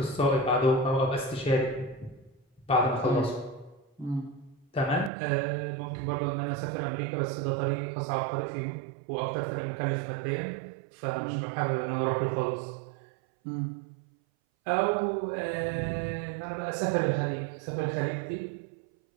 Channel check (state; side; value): drops out; left; at 5.1 s